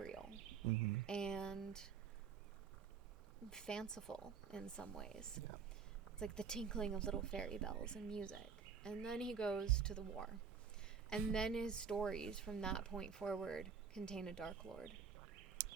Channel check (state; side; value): quieter; left; 6.3 dB